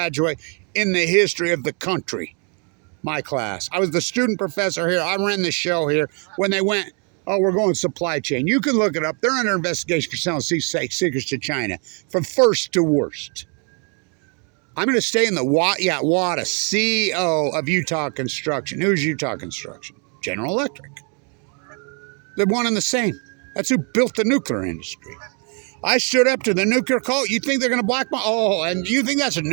in the history of the country. My class. I was the student professor here. I ran the show here. When they went, oh, we're going supply chain. You can look it up. They're under investigation for selling secrets to China, from first to worst. I'm going to stay in the Wattis, CEO of Utah Construction. Who's Utah Construction? General Electric. They're one and the same. That's who built the nuclear industry. I stood up to the nuclear cult. You think they're going to blackball? Oh, and you think that's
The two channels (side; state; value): left; quieter; 37.9 dB